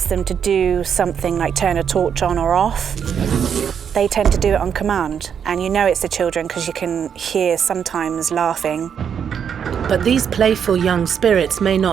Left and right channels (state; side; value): quieter; left; 7.7 dB